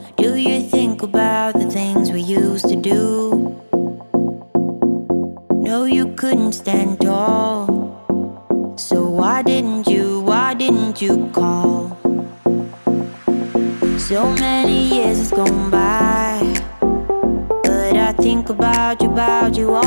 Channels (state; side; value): inverted; both; correlation -1.00